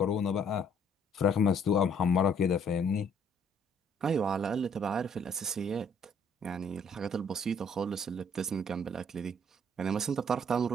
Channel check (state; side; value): normal; both; correlation 0.62